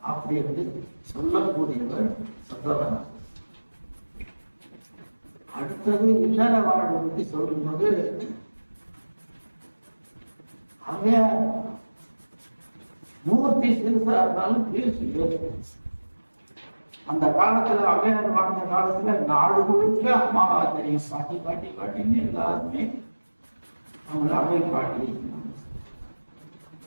அப்படி வந்து சொல்லக்கூடியவர் சொல்றவன். அடுத்தது இல்லற வாழ்வை பற்றி சொல்லும்போது அவன் மூர்த்தி சிறுசா இருந்தாலும் பேசி அந்த காலத்துல அவையார் வாழ்ந்த காலத்துல நாடு முழுக்க அம்மாவா தெரியும். பாட்டி பாட்டி பாட்டின்னு எல்லாருமே அவங்கள அவை பாட்டி.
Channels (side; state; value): both; inverted; correlation -1.00